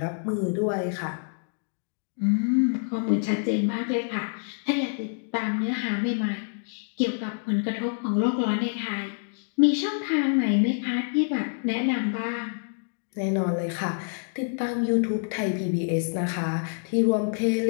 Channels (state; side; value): silent; right; digital silence